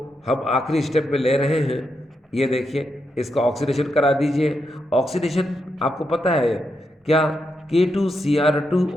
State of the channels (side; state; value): both; normal; correlation 0.83